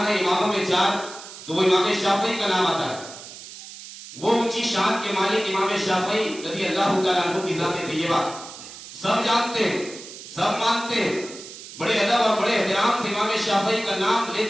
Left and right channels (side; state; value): right; noise; hiss, 14 dB below the sound